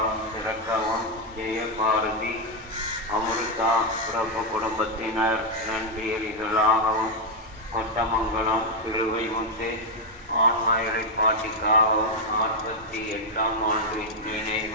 சிறக்கவும், ஜெயபாரதி அமிர்தா பிறப்பு குடும்பத்தினர் நன்றியறிதலாகவும், கொட்டமங்கலம் சிறுவை முத்து ஆன்மா இலைப்பாட்டிக்காகவும், 48ஆம் ஆண்டு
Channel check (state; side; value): normal; both; correlation 0.01